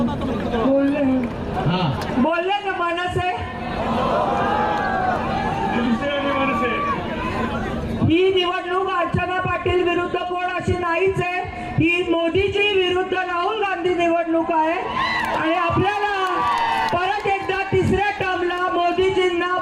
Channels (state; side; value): identical; both; correlation 1.00